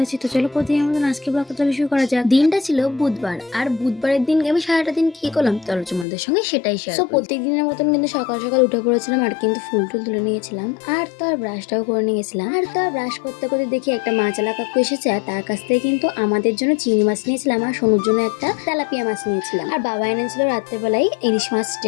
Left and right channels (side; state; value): right; drops out; at 6.1 s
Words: আছি। তো চলো প্রতিদিনের মতন আজকে ব্লগটা তাহলে শুরু করা যাক। দিনটা ছিল বুধবার, আর বুধবারের দিন আমি সারাটা দিন কি করলাম চলো তোমাদের সঙ্গে সেটাই শেয়ার করি। প্রত্যেক দিনের মতন কিন্তু সকাল সকাল উঠে পড়েছিলাম আর কিন্তু ফুল টুল তুলে নিয়েছিলাম, আর তো আর ব্রাশটাও করে নিয়েছিলাম। আর তো আর ব্রাশ করতে করতে দেখি একটা মাছালা কাকু এসেছে, আর তার কাছ থেকে কিন্তু আমাদের জন্য চিংড়ি মাছ নিয়েছিলাম আর সোনুর জন্য একটা তেলাপিয়া মাছ নিয়েছিলাম। আর বাবা এনেছিল রাত্রেবেলায় ইলিশ মাছ